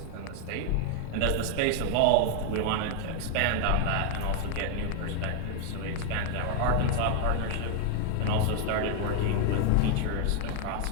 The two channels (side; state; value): both; different; correlation 0.00